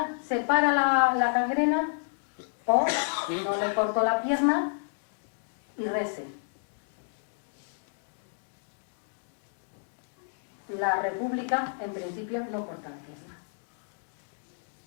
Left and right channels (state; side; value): silent; right; digital silence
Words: se para la gangrena, o no le corto la pierna y rece. La República, en principio, no corta la pierna.